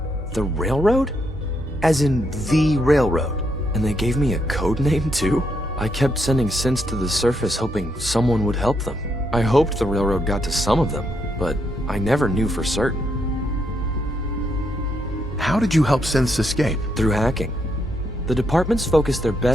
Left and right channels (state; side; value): normal; both; correlation 0.77